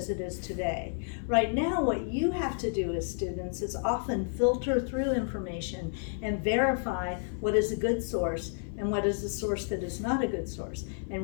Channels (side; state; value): right; silent; 57 dB below the other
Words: it is today. Right now, what you have to do as students is often filter through information and verify what is a good source and what is a source that is not a good source.